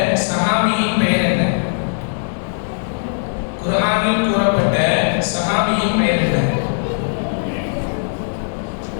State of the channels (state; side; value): silent; right; 67 dB below the other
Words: சஹாபியின் பெயர் என்ன? குர்ஆனில் கூறப்பட்ட சஹாபியின் பெயர் என்ன?